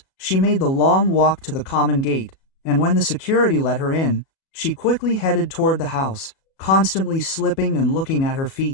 she made the long walk to the common gate, and when the security let her in, she quickly headed toward the house, constantly slipping and looking at her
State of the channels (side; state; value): right; late; 37 ms